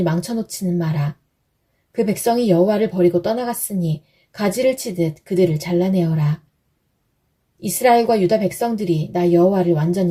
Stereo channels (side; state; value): both; identical; correlation 1.00